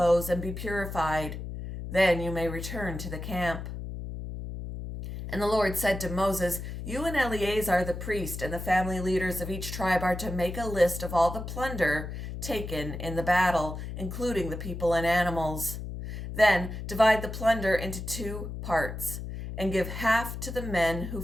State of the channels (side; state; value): left; noise; hum, 7 dB below the sound